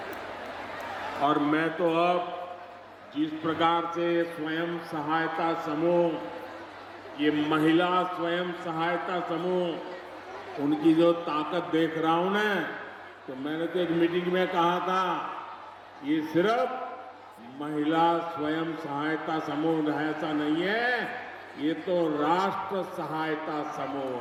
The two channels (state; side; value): identical; both; correlation 1.00